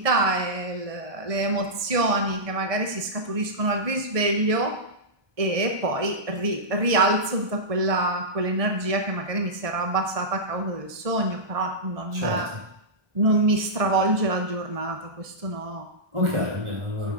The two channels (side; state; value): left; late; 1.6 ms